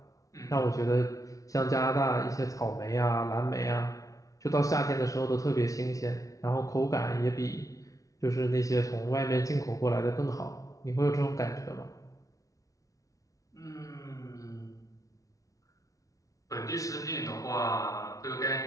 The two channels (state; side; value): late; right; 0.17 ms